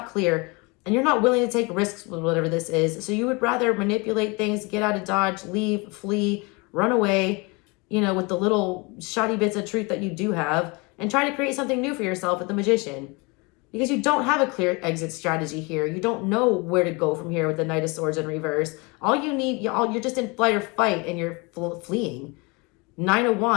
clear and you're not willing to take risks with whatever this is. So you would rather manipulate things, get out of Dodge, leave, flee, run away, with the little shoddy bits of truth that you do have and try to create something new for yourself with the Magician. Because you don't have a clear exit strategy here. You don't know where to go from here with the Knight of Swords in reverse. All you need, you're just in flight or fight and you're fleeing. 9 of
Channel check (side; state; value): right; quieter; 28.0 dB